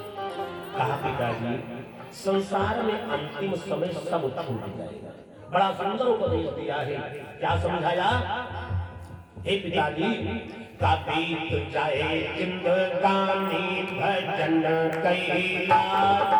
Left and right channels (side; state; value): both; identical; correlation 1.00